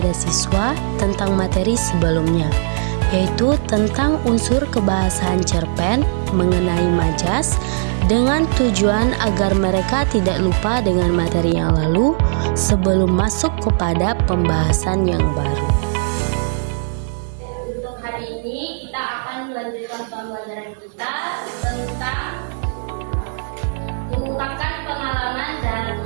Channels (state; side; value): silent; left; digital silence